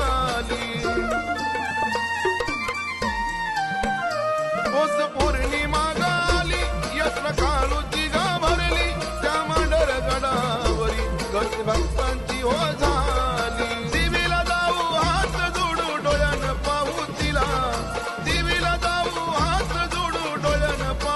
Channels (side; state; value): both; identical; correlation 1.00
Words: पौर्णिमा गाली यात्रा काळूची ग भरली, त्या मांढर गडावरी गर्दी भक्तांची हो झाली. देवीला जाऊ हात जोडू डोळ्यानं पाहू तिला, देवीला जाऊ हात जोडू डोळ्यानं